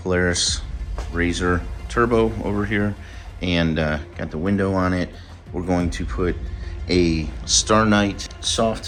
Polaris RZR Turbo over here, and got the window on it. We're going to put a Star Knight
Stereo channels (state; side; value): identical; both; correlation 1.00